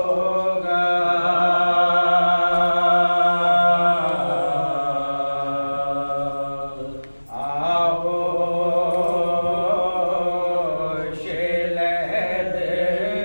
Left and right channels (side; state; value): both; inverted; correlation -1.00